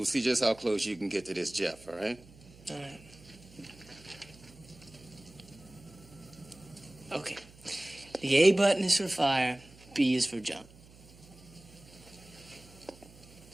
see just how close you can get to this Jeff, all right? All right. Okay. The A button is for fire, B is for jump.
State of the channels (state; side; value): noise; right; hum, 22 dB below the sound